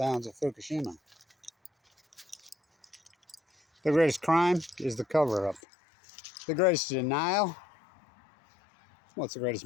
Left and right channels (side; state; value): right; drops out; at 5.6 s